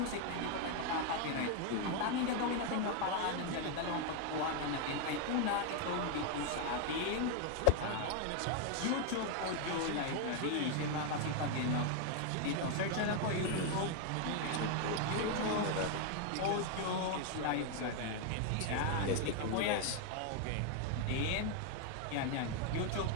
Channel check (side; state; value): both; different; correlation 0.01